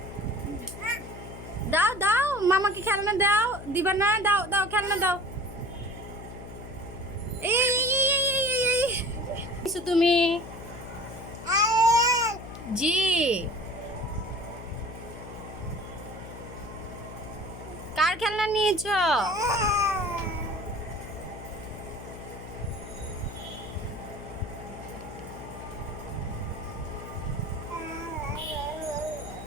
দাও দাও, মামাকে খেলনা দাও। দিবা না? দাও দাও, খেলনা দাও। এই তুমি জি কার খেলনা নিয়েছো?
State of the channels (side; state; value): left; noise; hum, 12 dB below the sound